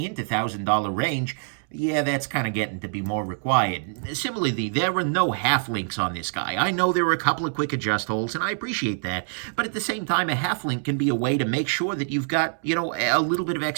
$1,000 range, Yeah, that's kind of getting to be more required. Similarly, there are no half links on this guy. I know there are a couple of quick adjust holes, and I appreciate that. But at the same time, a half link can be a way to make sure that you've got, a little bit of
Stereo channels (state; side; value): silent; left; 62 dB below the other